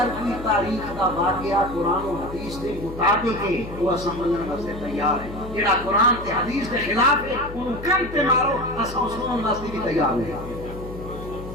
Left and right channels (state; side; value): noise; left; hum, 12 dB below the sound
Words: کوئی تاریخ کا واقعہ قرآن و حدیث کے مطابق ہے وہ سمجھنے واسطے تیار ہے، جڑا قرآن تے حدیث کے خلاف ہے انہوں کم تے مارو اساں سنن واسطے بھی تیار ہے۔